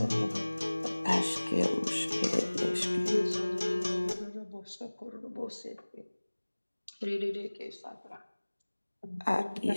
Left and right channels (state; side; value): inverted; both; correlation -1.00